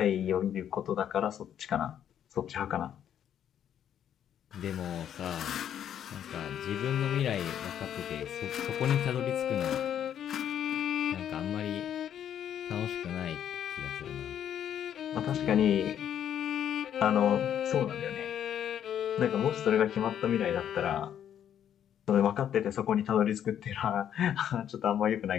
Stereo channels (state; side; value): quieter; right; 9.8 dB